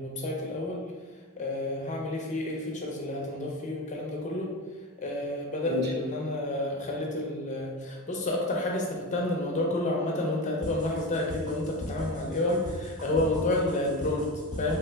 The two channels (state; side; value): normal; both; correlation 0.23